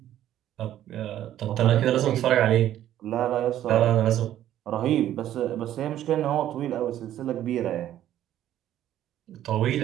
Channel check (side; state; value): left; quieter; 12.1 dB